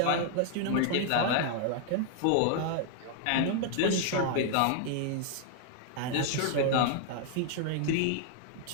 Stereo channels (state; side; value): different; both; correlation 0.00